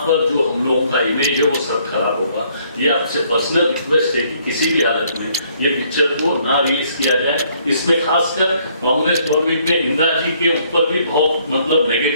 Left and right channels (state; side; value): inverted; both; correlation -0.65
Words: जो हम लोगों का इमेज है वो सब खराब होगा। ये आपसे पर्सनल रिक्वेस्ट है कि किसी भी हालत में ये पिक्चर को ना रिलीज किया जाए। इसमें खासकर कांग्रेस गवर्नमेंट ने इंदिरा जी के ऊपर भी बहुत मतलब